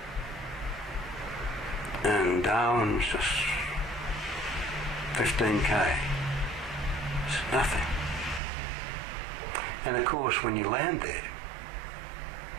And Darwin's just 15k. It's nothing. And of course, when you land there,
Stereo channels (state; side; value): drops out; left; at 8.4 s